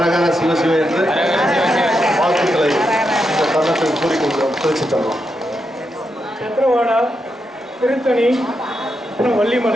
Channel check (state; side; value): normal; both; correlation 0.84